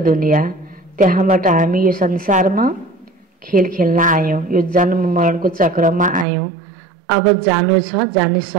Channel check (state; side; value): drops out; left; at 6.2 s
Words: दुनिया। त्यहाँबाट हामी यो संसारमा खेल खेल्न आयौं, यो जन्म मरणको चक्रमा आयौं। अब जानु छ, जाने